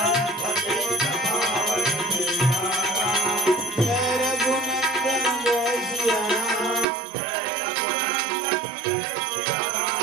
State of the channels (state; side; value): drops out; left; at 6.9 s